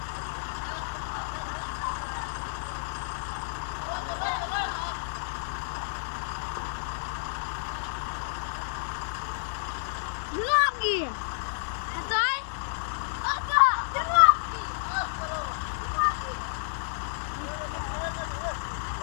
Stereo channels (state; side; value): silent; right; digital silence